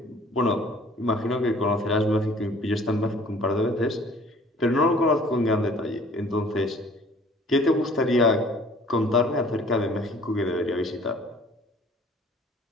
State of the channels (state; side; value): normal; both; correlation 0.53